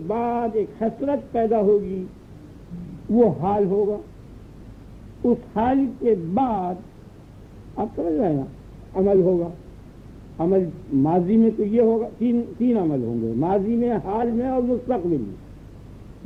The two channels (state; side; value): identical; both; correlation 1.00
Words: بعد ایک حسرت پیدا ہوگی، وہ حال ہوگا. اس حال کے بعد آپ سمجھ رہے ہیں نا عمل ہوگا. عمل ماضی میں تو یہ ہوگا، تین عمل ہوں گے، ماضی میں، حال میں اور مستقبل میں.